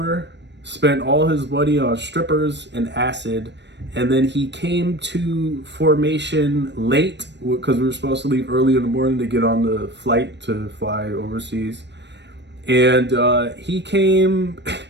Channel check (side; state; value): left; late; 0.51 ms